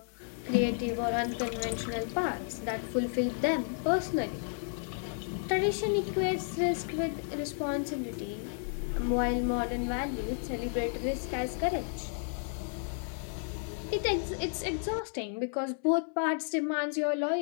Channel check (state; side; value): silent; right; 56 dB below the other